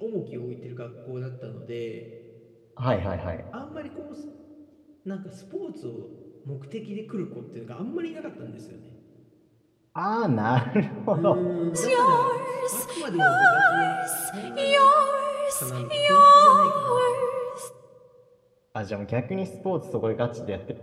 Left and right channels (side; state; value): both; identical; correlation 1.00